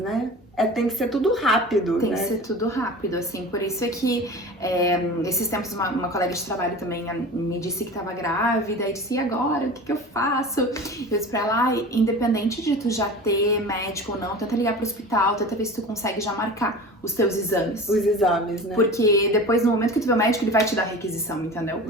Tem que ser tudo rápido, Tem que ser tudo rápido, assim. Por isso é que esses tempos uma colega de trabalho também me disse que estava grávida. E disse, e agora? O que eu faço? Eu disse pra ela, independente de tu já ter médico ou não, tenta ligar pro hospital, tenta ver se tu consegue já marcar os teus exames. Os exames, né? Porque depois, no momento que tu vê o médico, ele vai te dar requisição, entendeu?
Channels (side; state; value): both; normal; correlation 0.36